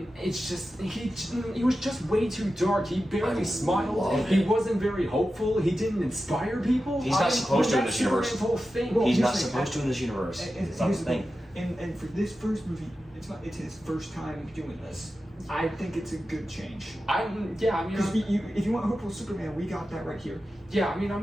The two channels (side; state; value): both; normal; correlation 0.92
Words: just he was just way too dark. He barely I smiled. love He it. wasn't very hopeful. He didn't inspire people. He's not supposed to in this universe. Superman's whole thing. Well, He's here's not the thing, supposed to in this universe. It's not the thing. And for this first movie, it's his first time doing this. I think it's a good change. Because if you want hopeful Superman, we got that right here. I'm